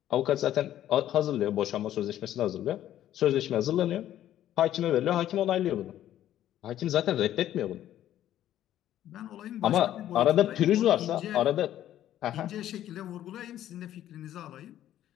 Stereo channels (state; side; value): quieter; right; 12.2 dB